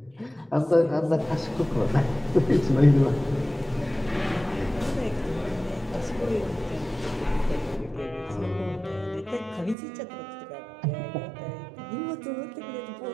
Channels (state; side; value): drops out; left; at 9.8 s